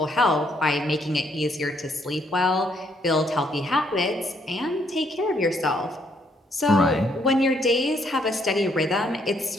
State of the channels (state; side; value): normal; both; correlation 0.71